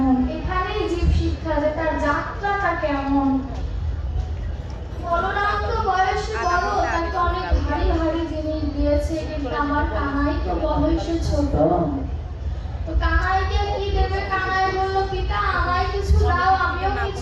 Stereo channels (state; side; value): identical; both; correlation 1.00